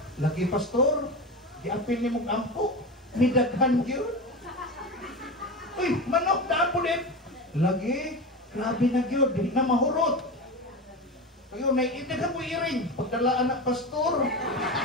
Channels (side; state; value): both; normal; correlation 0.24